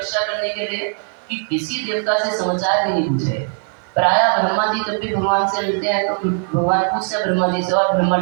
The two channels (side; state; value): left; silent; 59 dB below the other